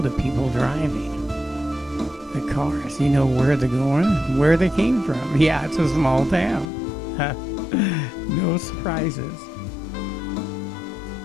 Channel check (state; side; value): drops out; right; at 6.7 s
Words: the people driving the cars. You know where they're going, where they came from. Yeah, it's a small town. No surprises.